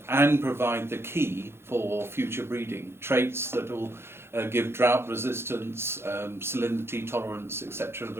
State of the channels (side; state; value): left; late; 0.12 ms